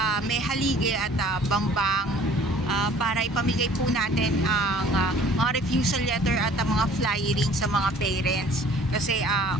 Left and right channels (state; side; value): normal; both; correlation 0.52